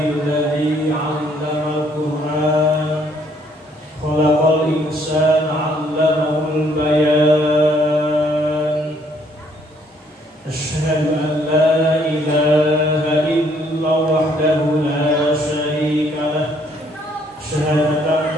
'allamal Qur'an khalaqal insana 'allamahul bayan. Asyhadu an la ilaha illallah wahdahu la syarika lah. Syahadatan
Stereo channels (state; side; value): normal; both; correlation 0.65